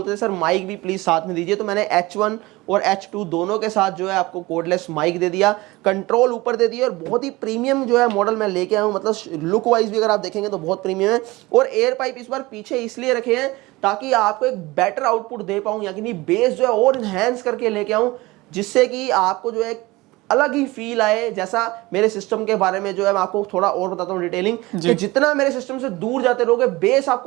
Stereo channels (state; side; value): quieter; left; 21.0 dB